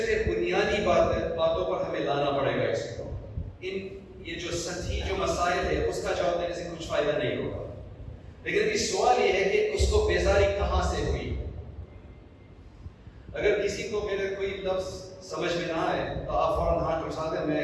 پھر بنیادی باتوں پر ہمیں لانا پڑے گا اس کو. یہ جو سطحی جو مسائل ہے اس کا جواب دینے سے کچھ فائدہ نہیں ہوگا. لیکن اس سوال یہ ہے کہ اس کو بیزاری کہاں سے ہوئی. اگر کسی کو میرے کوئی لفظ سمجھ میں نہ آئے تو آپ فوراً ہاتھ اٹھا دیں، میں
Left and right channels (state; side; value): identical; both; correlation 1.00